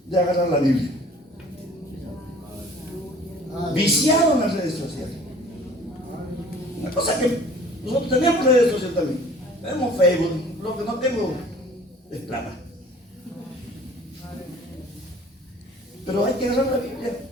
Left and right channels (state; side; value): normal; both; correlation 0.49